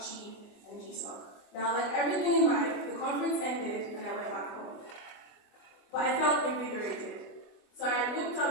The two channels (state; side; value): late; right; 24 ms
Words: and GSOC. Now, like everything in life, the conference ended and I went back home. But I felt invigorated. So I looked